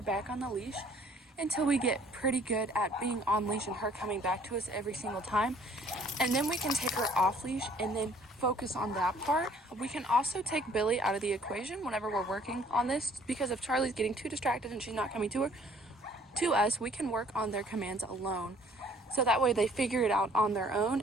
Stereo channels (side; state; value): both; normal; correlation 0.58